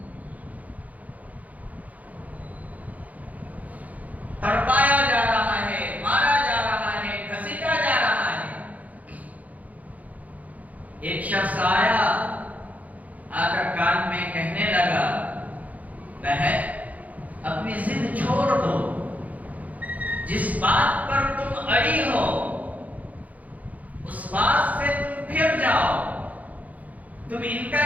تڑپایا جا رہا ہے، مارا جا رہا ہے، گھسیٹا جا رہا ہے۔ ایک شخص آیا، آ کر کان میں کہنے لگا، بہن اپنی ضد چھوڑ دو، جس بات پر تم اڑی ہو اس بات سے تم پھر جاؤ، تم ان کا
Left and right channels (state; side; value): late; left; 0.075 ms